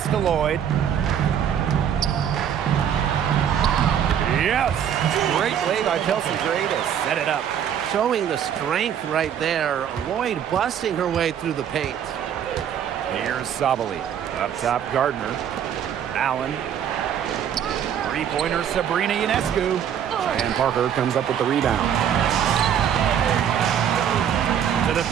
to Lloyd. Yes! Great play by Chelsea Gray to set it up. Showing the strength right there. Lloyd busting her way through the paint. Here's Sabali. Up top, Gardner. Allen. Three-pointer, Sabrina Ionescu. And Parker comes up with the rebound. To the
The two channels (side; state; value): left; quieter; 9.0 dB